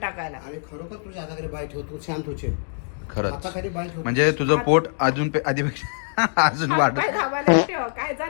आणि खरोखर तुझ्या हाताखाली बाय ठेवतो शांत होशील. खरंच हाताखाली बाय ठेवतो म्हणजे तुझं पोट अजून आधीपेक्षा अजून वाढ. पाय दाबायला ठेव काय जा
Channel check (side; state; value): right; silent; digital silence